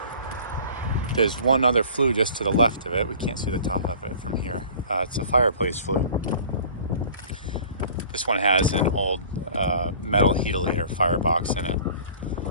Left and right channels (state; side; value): inverted; both; correlation -0.46